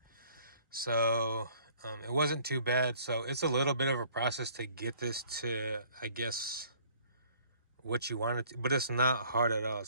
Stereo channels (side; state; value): both; inverted; correlation -0.57